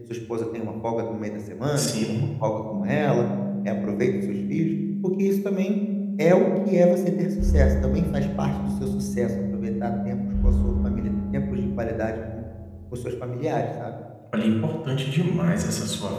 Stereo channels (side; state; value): both; identical; correlation 1.00